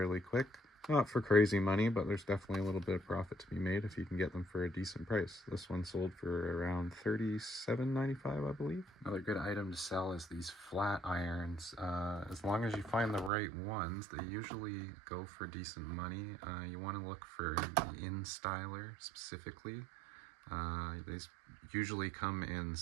quick. Not for crazy money, but there's definitely a little bit of profit to be made if you can get them for a decent price. This one sold for around $37.95, I believe. Another good item to sell is these flat irons. As long as you find the right ones, they usually go for decent money. You want to look for the InStyler specifically. They usually come in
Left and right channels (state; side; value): drops out; left; at 13.3 s